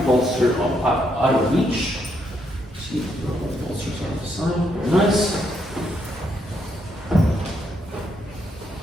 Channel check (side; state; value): both; normal; correlation 0.76